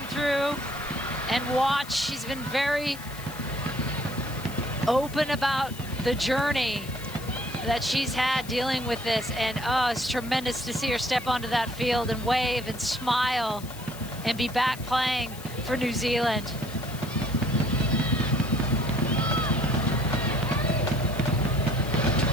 through and watch, she's been very open about the journey that she's had dealing with this. And it's tremendous to see her step onto that field and wave and smile and be back playing for New Zealand.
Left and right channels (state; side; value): noise; left; hiss, 16 dB below the sound